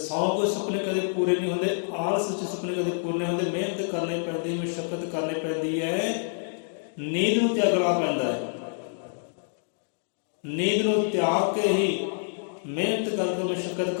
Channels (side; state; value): right; silent; digital silence